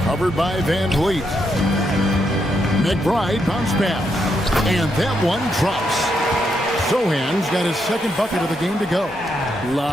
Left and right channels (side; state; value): both; normal; correlation 0.79